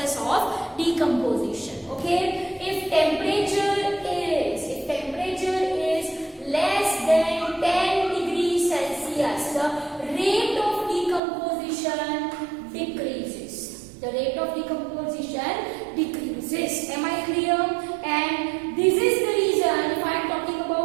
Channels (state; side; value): drops out; left; at 11.2 s